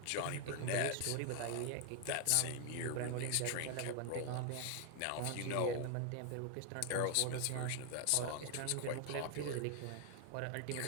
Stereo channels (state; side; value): different; both; correlation 0.00